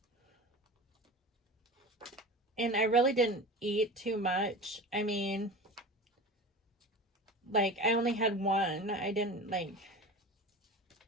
And I really didn't eat too much. I mean, like, I only had one. I didn't, like,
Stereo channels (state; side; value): normal; both; correlation 0.32